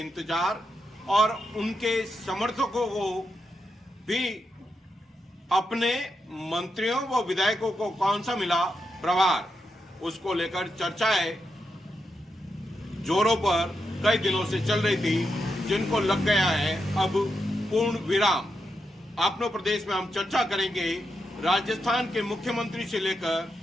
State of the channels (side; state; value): both; normal; correlation 0.84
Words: और उनके समर्थकों को भी अपने मंत्रियों व विधायकों को कौन सा मिला प्रभार, उसको लेकर चर्चाएं जोरों पर कई दिनों से चल रही थी, जिनको लग गया है अब पूर्ण विराम। अपने प्रदेश में हम चर्चा करेंगे राजस्थान के मुख्यमंत्री से लेकर